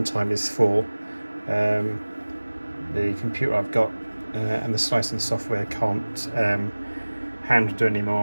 time is 4. The computer I've got and the slicing software can't handle do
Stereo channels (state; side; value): inverted; both; correlation -1.00